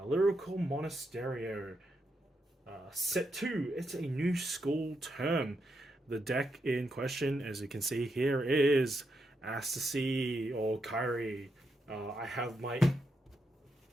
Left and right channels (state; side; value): normal; both; correlation 0.82